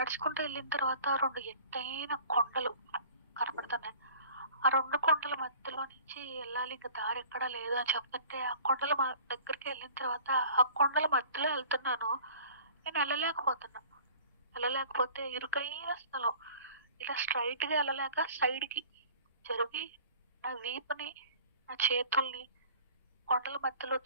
వెళ్ళిన తర్వాత 2 ఎత్తైన కొండలు కనపడుతున్నాయి. ఆ 2 కొండల మధ్యలో నుంచి వెళ్ళాలి, ఇంకా దారి ఎక్కడా లేదు అని చెప్తుంటే ఆ కొండల దగ్గరికి వెళ్ళిన తర్వాత ఆ కొండల మధ్యలో వెళ్తున్నాను. నేను వెళ్ళలేకపోతే ఇరుకైన స్థలం, ఇలా స్ట్రైట్ గా వెళ్ళలేక సైడ్ కి జరిగి నా వీపుని, నా చేతుల్ని కొండల మధ్యలో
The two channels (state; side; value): inverted; both; correlation -0.47